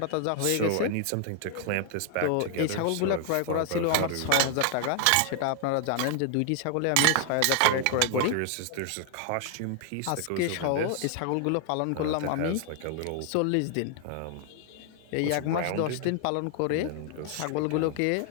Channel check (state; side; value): different; both; correlation 0.00